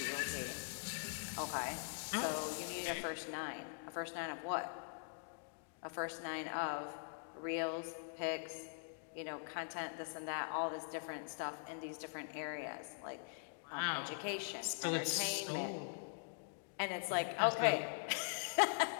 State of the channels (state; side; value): silent; right; digital silence